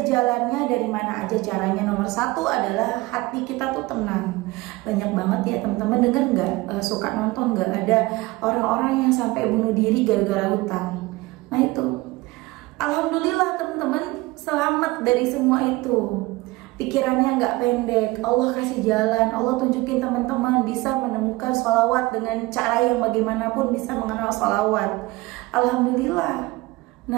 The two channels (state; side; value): quieter; left; 21.0 dB